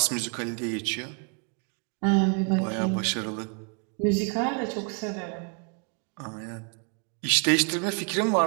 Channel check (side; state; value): left; quieter; 38.4 dB